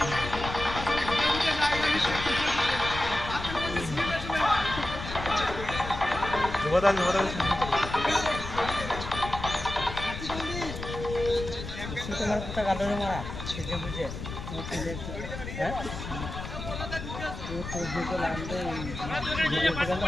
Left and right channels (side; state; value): left; noise; rumble, 8 dB below the sound